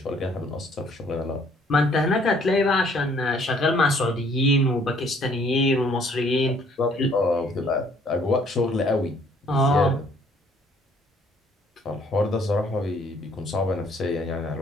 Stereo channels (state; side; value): normal; both; correlation 0.62